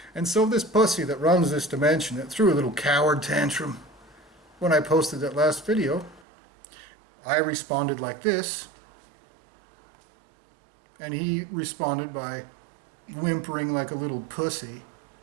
And so this pussy that runs this dimension, that threw a little coward tantrum when I posted that last video, I responded like this, and he responded by whimpering like a little pussy,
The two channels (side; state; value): left; drops out; at 6.2 s